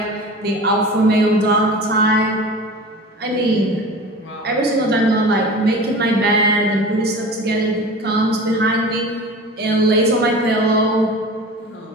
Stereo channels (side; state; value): both; normal; correlation 0.36